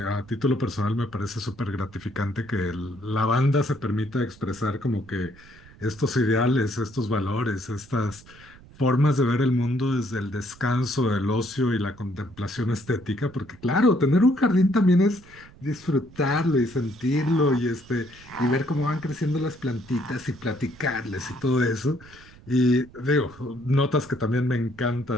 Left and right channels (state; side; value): noise; right; rumble, 23 dB below the sound